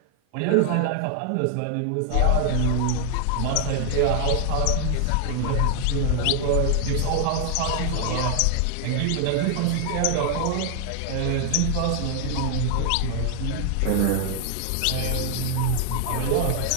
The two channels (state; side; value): different; both; correlation 0.00